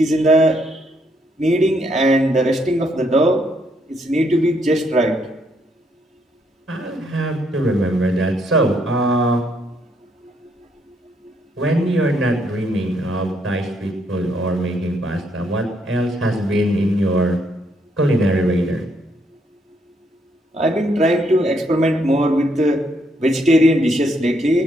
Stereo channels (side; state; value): both; normal; correlation 0.73